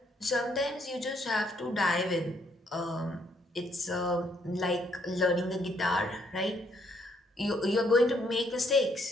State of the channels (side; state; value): both; normal; correlation 0.70